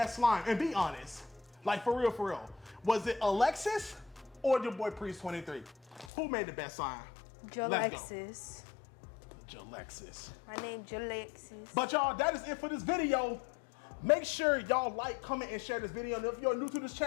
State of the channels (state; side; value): drops out; right; at 6.1 s